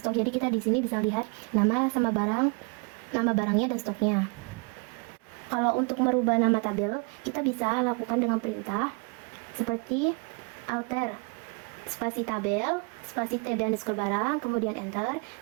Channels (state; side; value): quieter; left; 32.7 dB